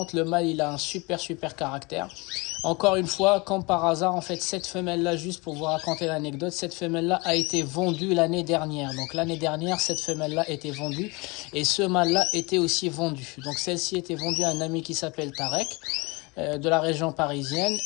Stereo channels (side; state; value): right; quieter; 26.6 dB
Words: Le mâle, il a un super caractère. Encore une fois, comme par hasard, en fait, cette femelle-là, juste pour vous raconter l'anecdote, cette femelle-là a été vendue l'année dernière. Donc l'année dernière, cette femelle-là était vendue et ce mâle-là était aussi vendu. Donc celle-ci était vendue à un ami qui s'appelle Tarek, de la région parisienne.